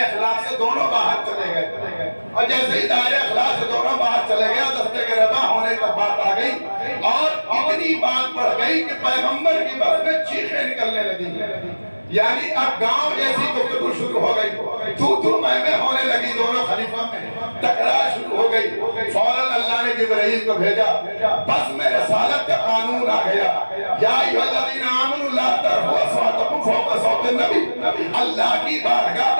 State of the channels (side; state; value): both; inverted; correlation -1.00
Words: اخلاق سے دونوں باہر چلے گئے. اور جیسے ہی دائرہ اخلاق سے دونوں باہر چلے گئے دستے کے ربا ہونے تک بات آ گئی اور اتنی بات بڑھ گئی کہ پیغمبر کی بات میں چیخیں نکلنے لگی. یعنی اب گاؤں جیسی گفتگو شروع ہو گئی، تو میں ہونے لگی. دونوں خلیفہ میں تکرار شروع ہو گئی. فوراً اللہ نے جبرائیل کو بھیجا، بس میں رسالت کا قانون آ گیا. یا ایھا الذین آمنوا لا ترفعوا اصواتکم فوق صوت النبی. اللہ کی بارگاہ